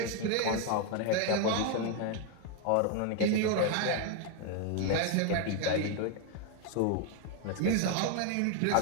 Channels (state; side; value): different; both; correlation 0.01